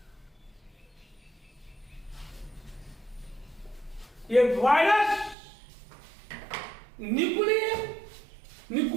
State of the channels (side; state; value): left; drops out; at 5.4 s